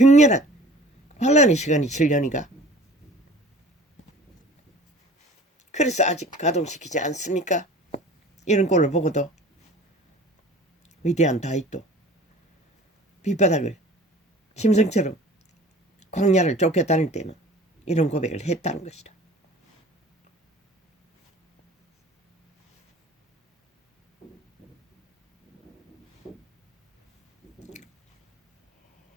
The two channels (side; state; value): both; normal; correlation 0.45